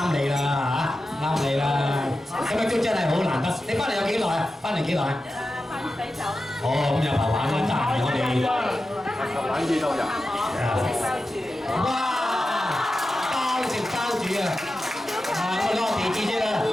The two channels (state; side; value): normal; both; correlation 0.92